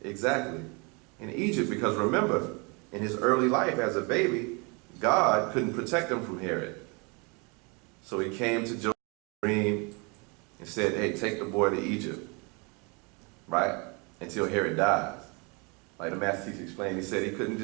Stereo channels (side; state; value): left; quieter; 30.8 dB